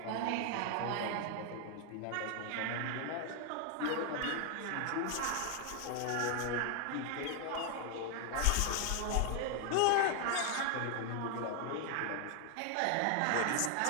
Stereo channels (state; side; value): different; both; correlation 0.00